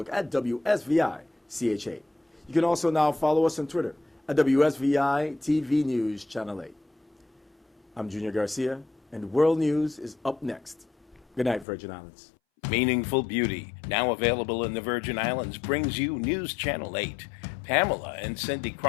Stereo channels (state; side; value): drops out; right; at 11.7 s